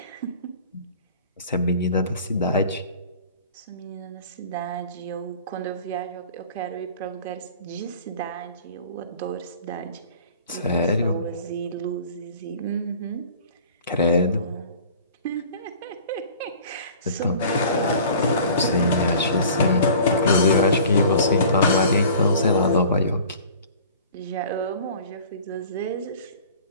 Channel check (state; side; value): inverted; both; correlation -0.45